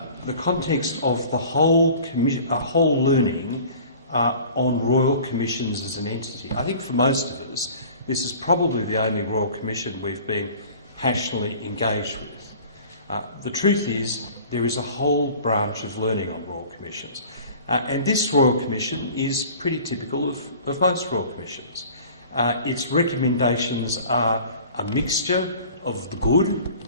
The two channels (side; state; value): both; inverted; correlation -0.45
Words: context of the whole learning on Royal Commissions as an entity. I think for most of us, this is probably the only Royal Commission we've been passionately engaged with. The truth is, there is a whole branch of learning on Royal Commissions. And this Royal Commission is pretty typical of most Royal Commissions. Its recommendations are a mixture of the good,